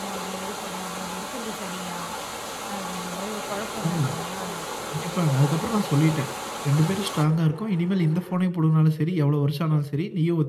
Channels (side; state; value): both; identical; correlation 1.00